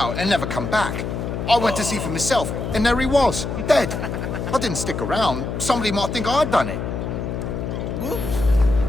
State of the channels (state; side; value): noise; left; hum, 4 dB below the sound